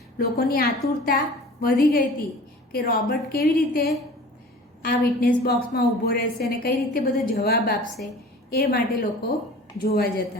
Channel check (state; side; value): normal; both; correlation 0.42